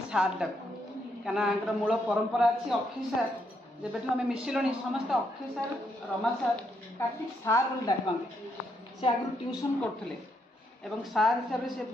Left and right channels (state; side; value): normal; both; correlation 0.77